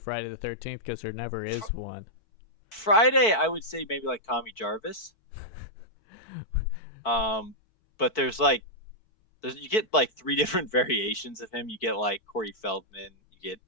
the 13th because there never is one. Friday. I would say maybe like Tommy Jarvis. Um, but you get like three different variations of him. You get like Corey Feldman, you get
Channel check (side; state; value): right; late; 4.5 ms